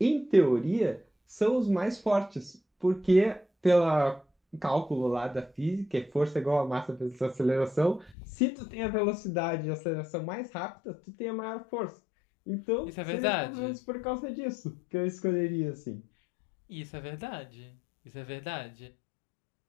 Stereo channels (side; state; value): right; drops out; at 8.2 s